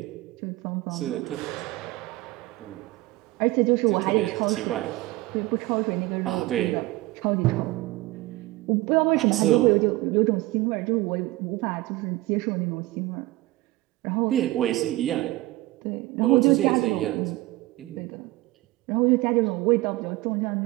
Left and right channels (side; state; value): left; quieter; 18.9 dB